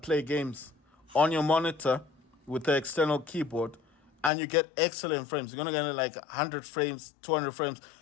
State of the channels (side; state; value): right; drops out; at 4.3 s